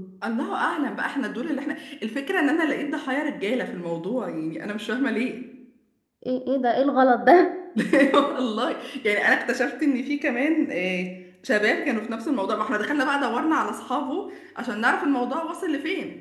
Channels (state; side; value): identical; both; correlation 1.00